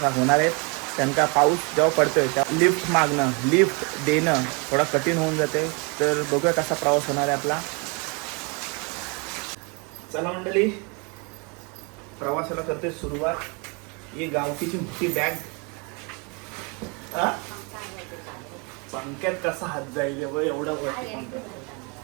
होणार आहेत. कारण का पाऊस जेव्हा पडतोय तेव्हा लिफ्ट मागणं, लिफ्ट देणं थोडा कठीण होऊन जाते. तर बघूया कसा प्रवास होणार आहे आपला. चला मंडळी, प्रवासाला करते सुरुवात. ही गावकीची मोठी बॅग. पंख्यात कसा हात जाईल एवढा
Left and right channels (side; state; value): left; quieter; 32.1 dB